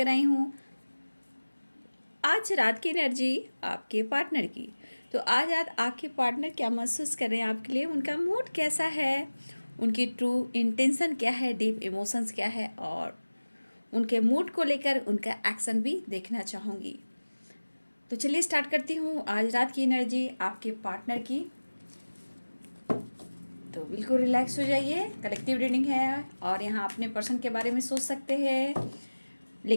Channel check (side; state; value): both; inverted; correlation -1.00